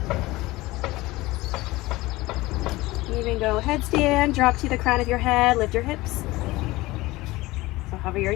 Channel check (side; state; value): right; quieter; 19.7 dB